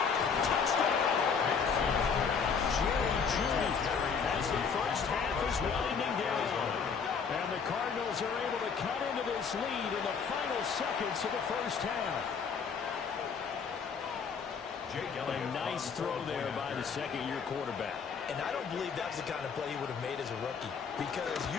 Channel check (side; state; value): right; quieter; 6.0 dB